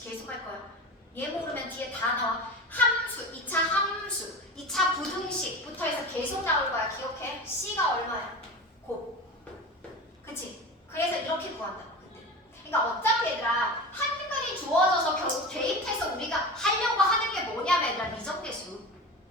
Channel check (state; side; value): normal; both; correlation 0.29